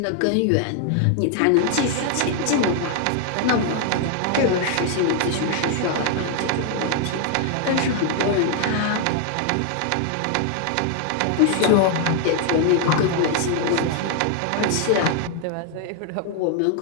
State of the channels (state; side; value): different; both; correlation 0.00